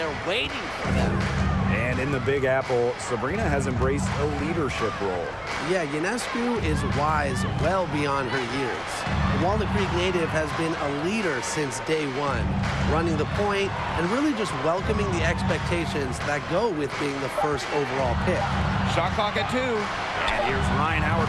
waiting for them. And in the Big Apple, Sabrina has embraced a leadership role. Yeah, Ionescu is wise well beyond her years. The Walnut Creek native has been a leader since day one, running the point and really just welcoming the expectations that go with being the first overall pick. Shot clock at 2. And here's Ryan Howard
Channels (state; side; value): identical; both; correlation 1.00